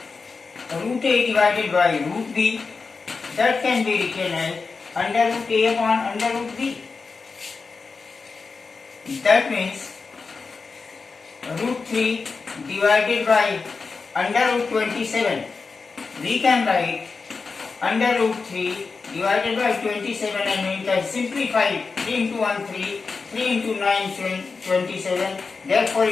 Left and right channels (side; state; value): right; quieter; 4.6 dB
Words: root a divided by root b, that can be written as under root a upon under root b. That means root 3 divided by under root 27. We can write under root 3 divided by 27, and we can simplify 3 into 1 3, 3 into 9 27. Therefore